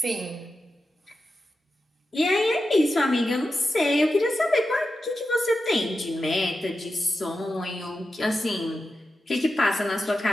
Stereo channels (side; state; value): both; normal; correlation 0.90